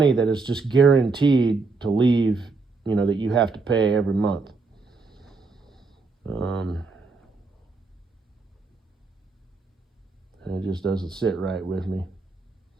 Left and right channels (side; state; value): left; quieter; 4.0 dB